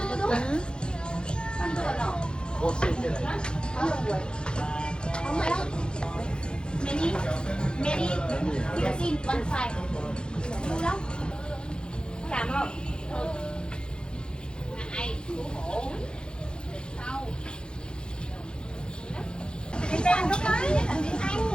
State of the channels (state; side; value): late; right; 0.049 ms